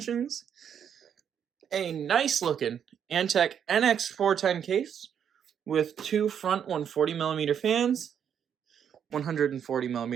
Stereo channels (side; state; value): left; quieter; 8.3 dB